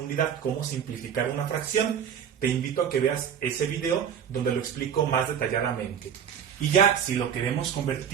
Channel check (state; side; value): quieter; left; 8.2 dB